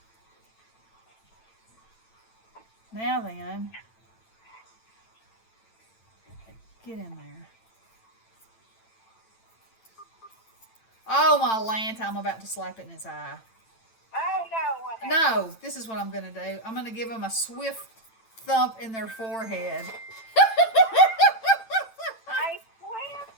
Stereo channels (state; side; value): late; right; 8.9 ms